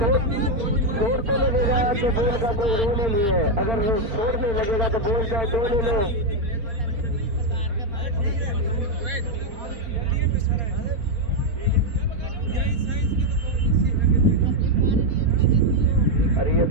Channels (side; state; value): left; late; 4.2 ms